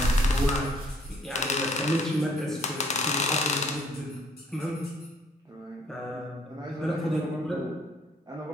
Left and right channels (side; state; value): both; normal; correlation 0.62